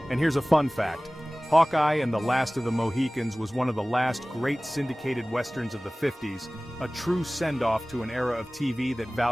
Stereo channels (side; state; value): both; normal; correlation 0.98